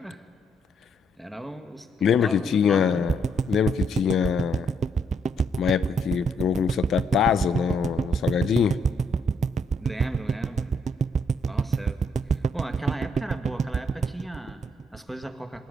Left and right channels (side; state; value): both; normal; correlation 0.73